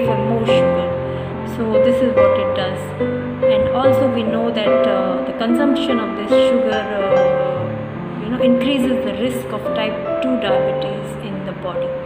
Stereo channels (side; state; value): both; identical; correlation 1.00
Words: for more sugar. So this is what it does. And also we know that the consumption of this sugar increases the risk of type 2 diabetes in the body.